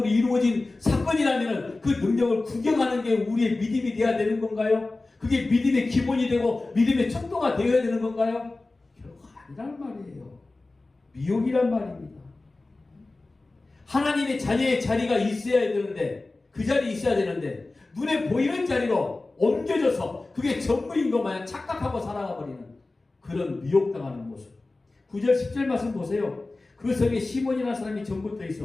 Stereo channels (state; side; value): quieter; right; 3.2 dB